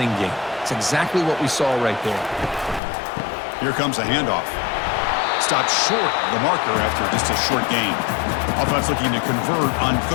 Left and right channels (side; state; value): right; drops out; at 2.8 s